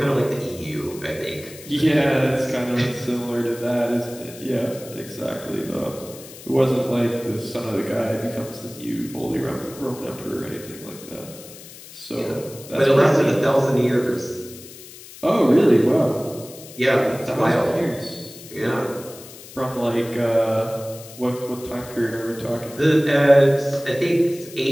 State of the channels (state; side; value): noise; left; hiss, 17 dB below the sound